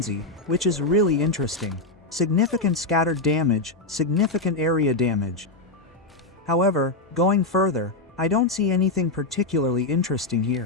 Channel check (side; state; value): right; quieter; 3.1 dB